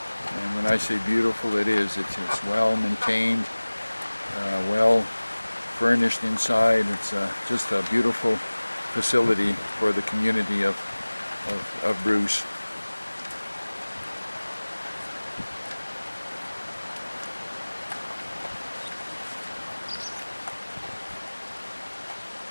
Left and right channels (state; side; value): inverted; both; correlation -1.00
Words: when I say beautiful, it is. It's well maintained, well furnished inside. It's just a beautiful facility for the community of Bruce.